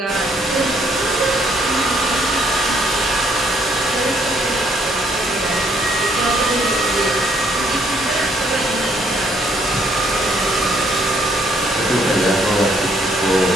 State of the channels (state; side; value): normal; both; correlation 0.67